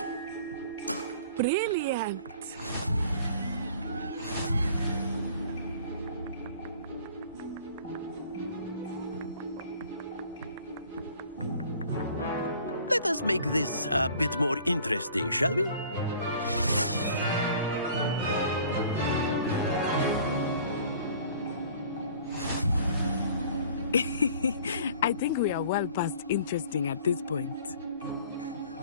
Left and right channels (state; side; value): inverted; both; correlation -0.50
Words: Brilliant. Let us make this a bit more interesting, shall we? I think we are well past interesting at this point.